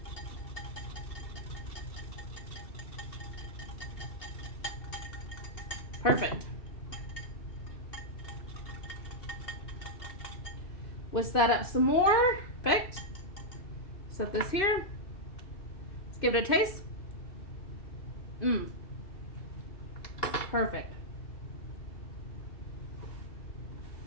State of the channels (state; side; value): late; right; 2.6 ms